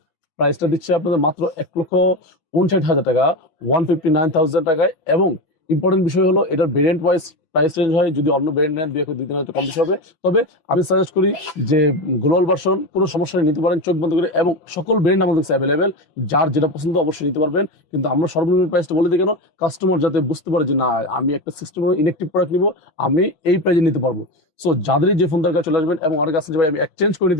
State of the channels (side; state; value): right; late; 6.1 ms